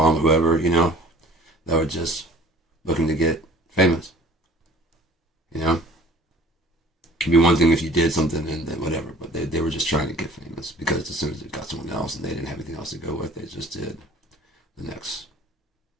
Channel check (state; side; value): normal; both; correlation 0.49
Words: whoever, that were just looking to get famous. Could be one thing if you did something and then whatever, but they were just trying to get famous because as soon as they got someone else and they didn't have anything else to go with, they just did the next